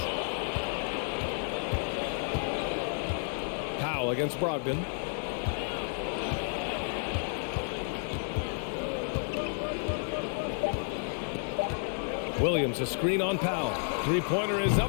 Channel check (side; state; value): right; silent; 57 dB below the other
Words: Powell against Brogdon. Williams, a screen on Powell. Three-pointer is